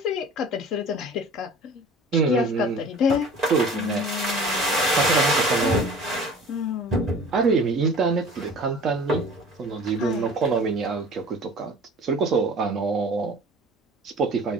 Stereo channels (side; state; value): both; normal; correlation 0.43